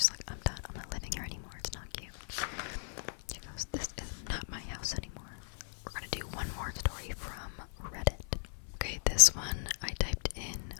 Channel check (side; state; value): right; silent; 53 dB below the other